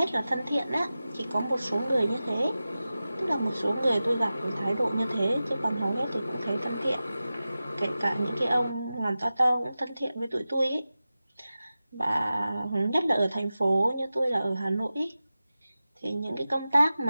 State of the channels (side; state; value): both; inverted; correlation -0.94